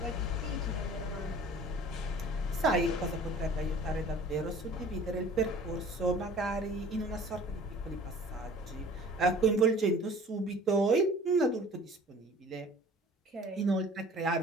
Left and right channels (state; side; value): normal; both; correlation 0.47